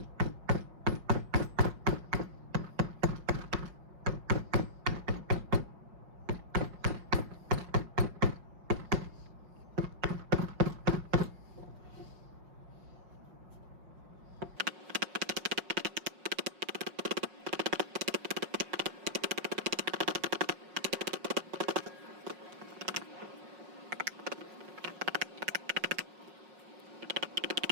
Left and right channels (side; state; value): left; late; 5.5 ms